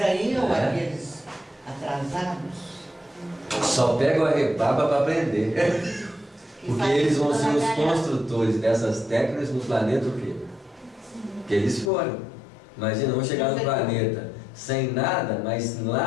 aí, aqueles atrasados... Só pegam a rebaba para aprender. Porque eles vão ser os construtores dessas técnicas no planeta o quê? Que eles foram. Imagina, vão chegar no planeta sem nada, mas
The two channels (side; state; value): right; drops out; at 11.9 s